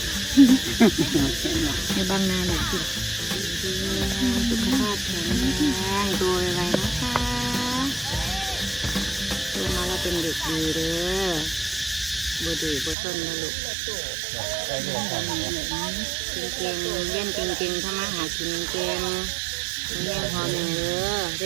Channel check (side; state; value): left; drops out; at 13.0 s